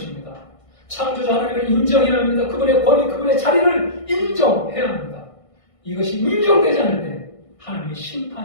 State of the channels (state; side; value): late; right; 1.6 ms